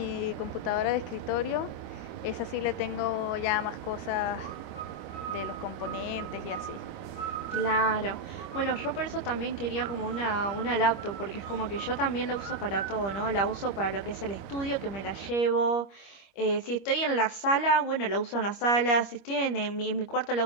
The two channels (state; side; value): late; right; 25 ms